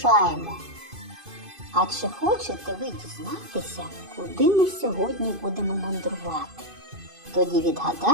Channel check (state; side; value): late; left; 2.5 ms